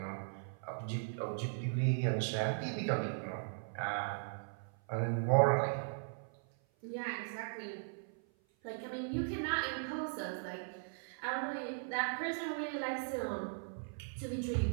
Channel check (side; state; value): left; silent; 52 dB below the other